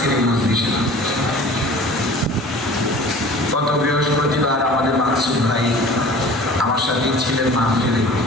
এই মজলিসে। গত বৃহস্পতিবার আমাদের মাকসুদ ভাই আমার সাথেই ছিলেন মাহফিলে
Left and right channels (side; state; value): both; normal; correlation 0.44